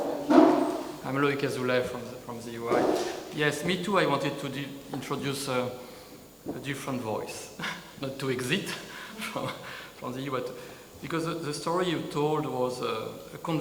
I'm Loïc Azoulay from the UI. Yes, me too. I wanted to introduce a different voice, not to exit from the EU, but because the story you told was a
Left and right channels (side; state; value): both; identical; correlation 1.00